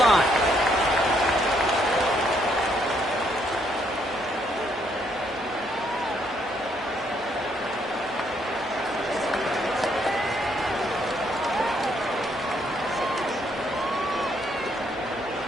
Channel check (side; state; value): both; normal; correlation 0.72